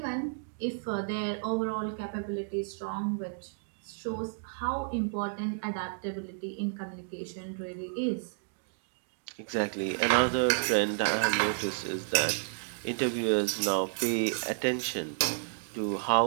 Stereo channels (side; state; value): left; silent; digital silence